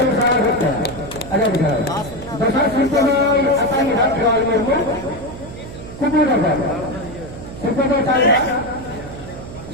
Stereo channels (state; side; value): noise; right; hum, 13 dB below the sound